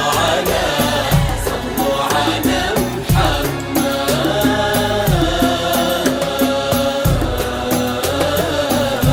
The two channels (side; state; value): both; identical; correlation 1.00